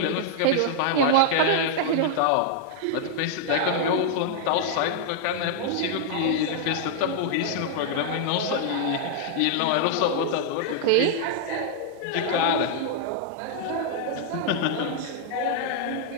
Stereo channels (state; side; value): different; both; correlation -0.01